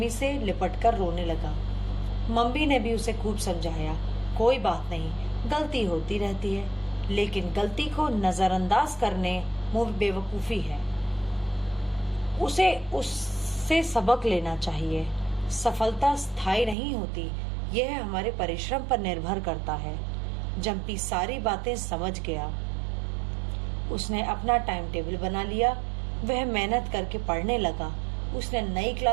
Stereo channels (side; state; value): left; drops out; at 16.8 s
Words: से लिपट कर रोने लगा। मम्मी ने भी उसे खूब समझाया, कोई बात नहीं, गलती होती रहती है, लेकिन गलती को नजरअंदाज करने मुंह बेवकूफी है। उसे उससे सबक लेना चाहिए। सफलता स्थायी नहीं होती, यह हमारे परिश्रम पर निर्भर करता है। जंपी सारी बातें समझ गया। उसने अपना टाइम टेबल बना लिया। वह मेहनत करके पढ़ने लगा। उसने नई